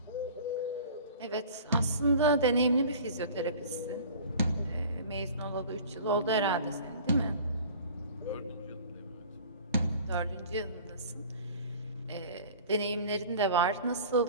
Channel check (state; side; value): inverted; both; correlation -0.43